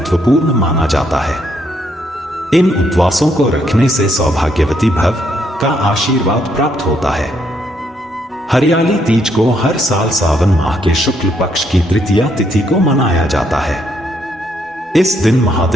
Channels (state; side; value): normal; both; correlation 0.73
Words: माना जाता है। इन उपवासों को रखने से सौभाग्यवती भव का आशीर्वाद प्राप्त होता है। हरियाली तीज को हर साल सावन माह के शुक्ल पक्ष की तृतीया तिथि को मनाया जाता है। इस दिन